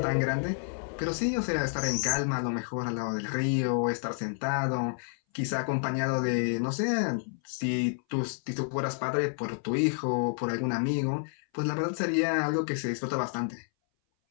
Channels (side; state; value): right; silent; 58 dB below the other